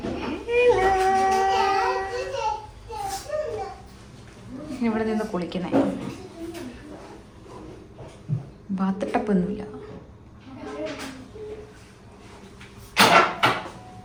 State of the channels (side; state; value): both; identical; correlation 1.00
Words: ഇവിടെ നിന്ന് കുളിക്കുന്നേ. ബാത്ത് ടപ്പൊന്നുമില്ല.